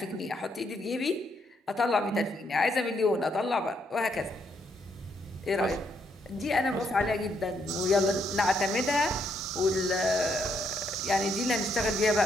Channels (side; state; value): both; normal; correlation 0.74